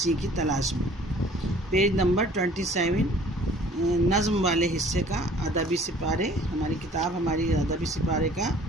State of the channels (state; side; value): normal; both; correlation 0.53